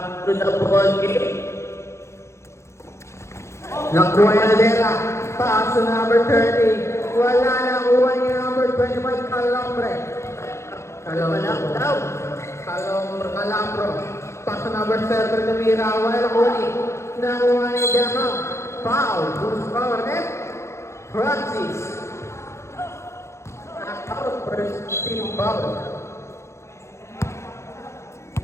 to the ball game. Nakuha niya na Dela. Pass to number 30. Wala na kuha niya number 25, Calambre. Calambro. Pass to number 7, Namira. Wala na kuha ni. Nakuha ni Dela. Foul. Who's foul? Francis. Knockout. First team foul.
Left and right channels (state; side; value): late; right; 0.13 ms